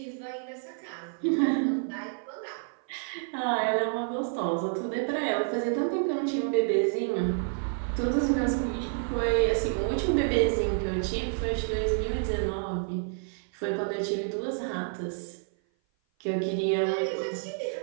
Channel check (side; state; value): left; silent; 55 dB below the other